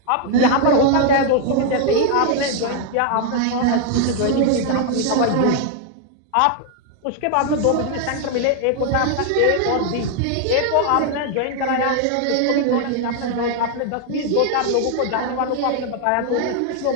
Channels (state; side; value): different; both; correlation 0.00